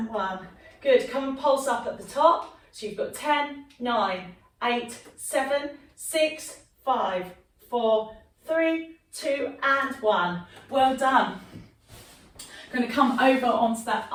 one. Good, come and pulse up at the top. So you've got 10, 9, 8, 7, 6, 5, 4, 3, 2 and 1. Well done. I'm going to come over onto that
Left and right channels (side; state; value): both; identical; correlation 1.00